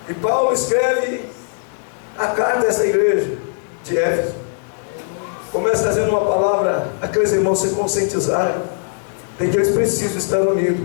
e Paulo escreve a carta a essa igreja de Éfeso. Começa trazendo uma palavra, aqueles irmãos se conscientizarem de que eles precisam estar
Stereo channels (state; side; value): silent; right; digital silence